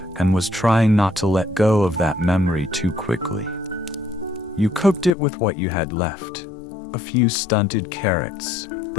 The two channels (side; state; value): right; drops out; at 5.1 s